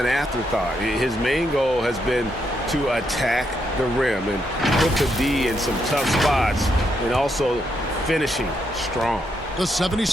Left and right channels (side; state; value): both; normal; correlation 0.79